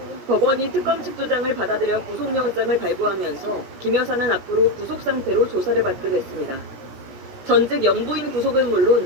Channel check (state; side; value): late; left; 17 ms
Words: 법원이 특검 측 주장을 받아들여 구속영장을 발부하면서 김 여사는 앞으로 구속 상태로 조사를 받게 됐습니다. 전직 영부인 구속은